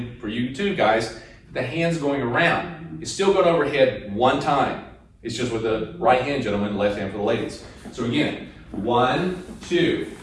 for you too, guys, the hand's going around. It's still going overhead one time. It's just with the right hand, gentlemen, left hand for the ladies. So again, 1, 2,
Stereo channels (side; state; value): both; identical; correlation 1.00